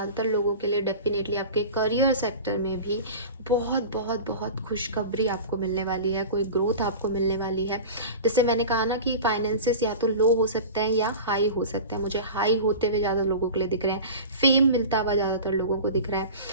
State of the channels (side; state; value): both; inverted; correlation -0.33